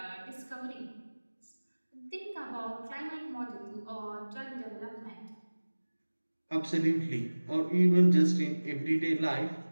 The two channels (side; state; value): both; inverted; correlation -1.00